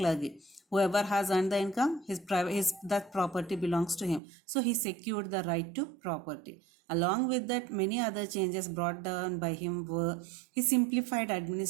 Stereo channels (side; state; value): left; drops out; at 4.2 s